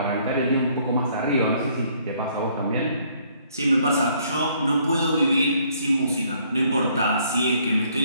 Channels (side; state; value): both; inverted; correlation -0.65